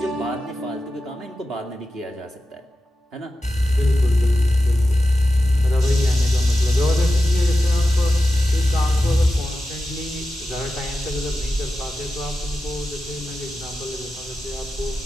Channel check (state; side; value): normal; both; correlation 0.92